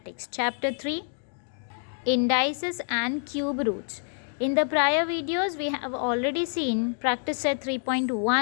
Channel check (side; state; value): right; silent; 56 dB below the other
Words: Chapter 3 Indices and Cube Roots. In the prior videos we have already seen practice set